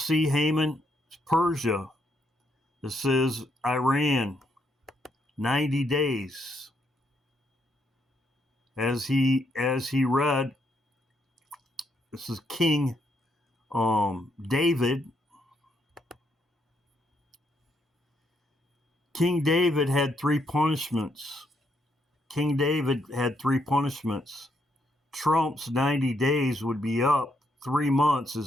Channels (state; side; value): normal; both; correlation 0.76